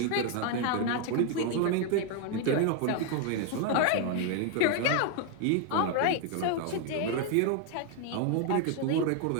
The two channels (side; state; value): both; different; correlation 0.01